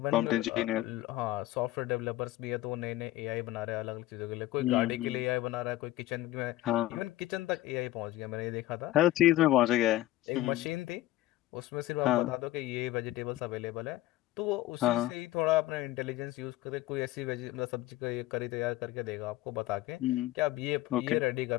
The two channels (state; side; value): quieter; right; 15.8 dB